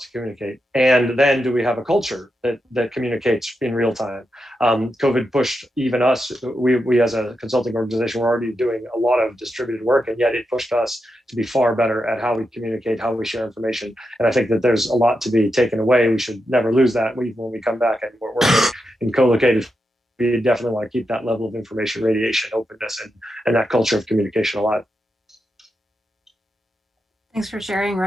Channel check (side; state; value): both; normal; correlation 0.87